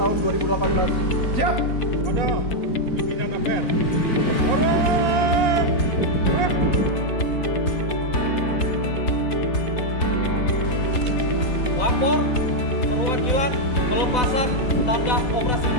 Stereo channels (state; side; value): late; right; 4.0 ms